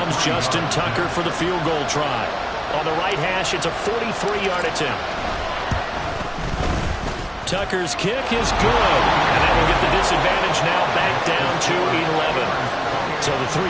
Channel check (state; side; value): identical; both; correlation 1.00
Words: Justin Tucker for the field goal try. On the right hash, it's a 43-yard attempt. Tucker's kick is good, and that will get the disadvantage now back down to 11. So the